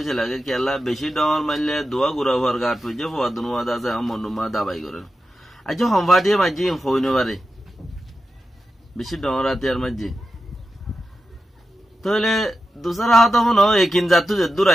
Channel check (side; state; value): both; normal; correlation 0.91